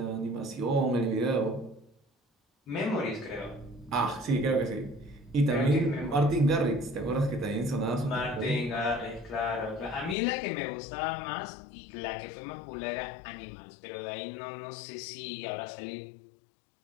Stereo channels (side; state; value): right; drops out; at 10.2 s